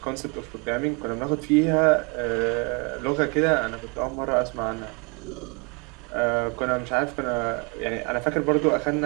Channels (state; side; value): quieter; left; 33.1 dB